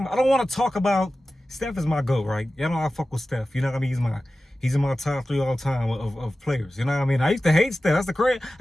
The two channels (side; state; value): both; normal; correlation 0.95